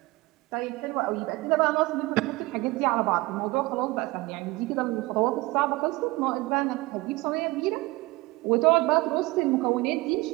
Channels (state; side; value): quieter; left; 21.5 dB